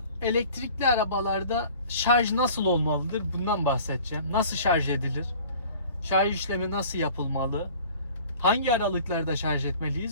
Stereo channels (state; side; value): inverted; both; correlation -0.47